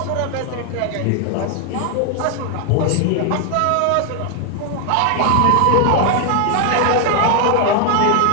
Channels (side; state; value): both; different; correlation 0.00